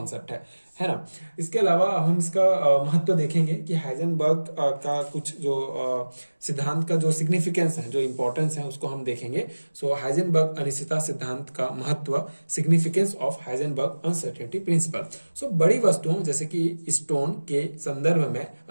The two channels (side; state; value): both; inverted; correlation -1.00